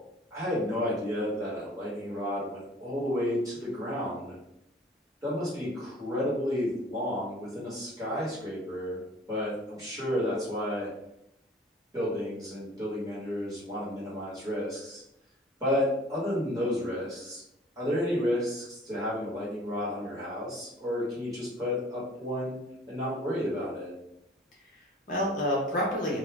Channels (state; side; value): normal; both; correlation 0.48